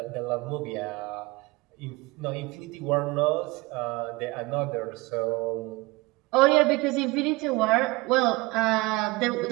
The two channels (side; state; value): left; quieter; 23.2 dB